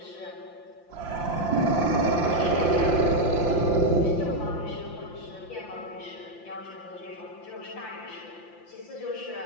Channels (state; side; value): late; right; 5.8 ms